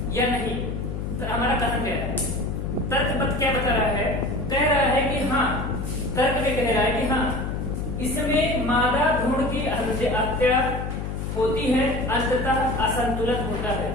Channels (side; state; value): left; noise; hum, 4 dB below the sound